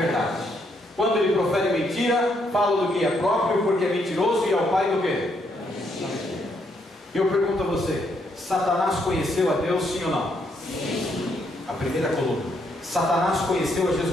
Quando ele profere mentira, fala do que é próprio, porque é mentiroso e é o pai do quê? E eu pergunto a você, Satanás conheceu a Deus, sim ou não? Sim. A primeira coluna. Satanás conheceu a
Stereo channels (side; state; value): both; normal; correlation 0.74